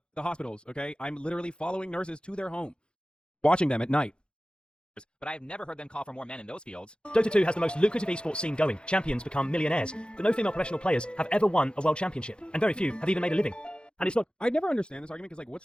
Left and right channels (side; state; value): right; late; 0.052 ms